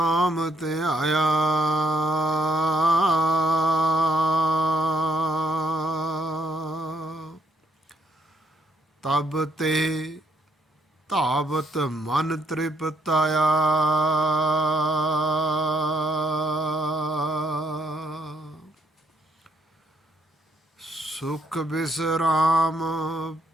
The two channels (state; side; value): normal; both; correlation 0.72